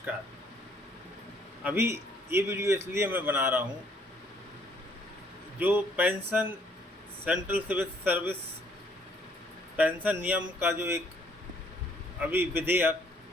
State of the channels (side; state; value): both; normal; correlation 0.64